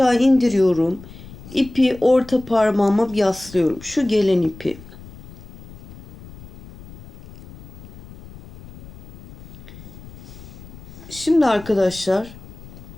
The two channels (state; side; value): noise; left; rumble, 19 dB below the sound